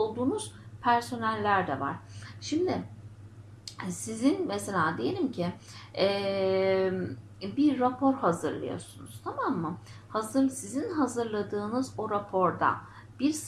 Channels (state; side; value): identical; both; correlation 1.00